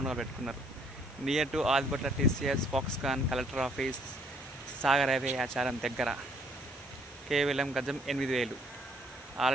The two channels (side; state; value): left; noise; hiss, 25 dB below the sound